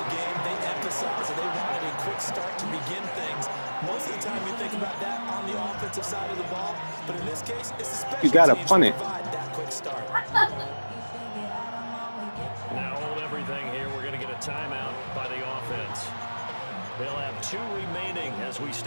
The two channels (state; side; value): inverted; both; correlation -1.00